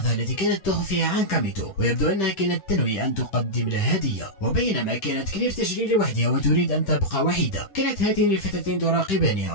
التي كانت تخفيها عن كاميتو، ويبدو أنها كانت تنوي أن تقدم له هدية. وبينما كانت كلير تجري لوحدها وتريد أن تبقى وحيدة، كانت هاتين الفتاتين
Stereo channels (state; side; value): late; right; 10 ms